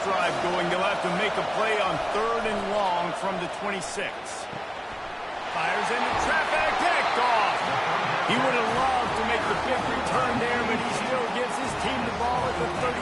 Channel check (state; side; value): identical; both; correlation 1.00